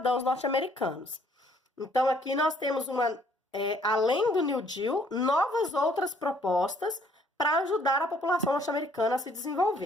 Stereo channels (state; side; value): normal; both; correlation 0.63